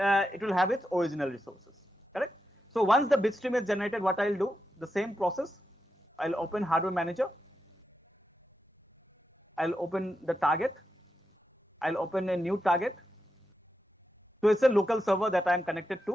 it will have its original resources, correct? So once the bitstream is generated, what I'll do, the same process, I'll open hardware manager, I'll open the target, I'll open a new target. So it's a local server that I'm connected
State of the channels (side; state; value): both; normal; correlation 0.87